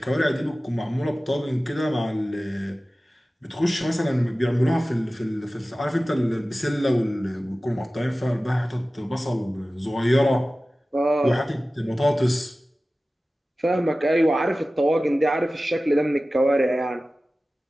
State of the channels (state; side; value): normal; both; correlation 0.96